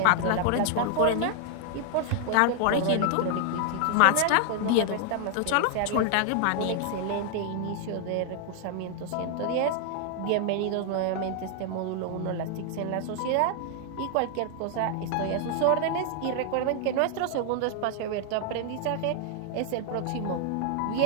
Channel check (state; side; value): different; both; correlation 0.00